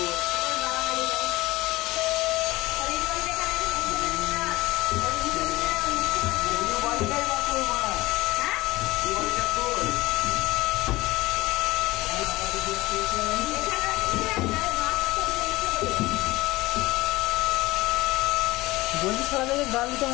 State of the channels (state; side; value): quieter; right; 19.8 dB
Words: বলছি সারা জায়গায় গাল দিতে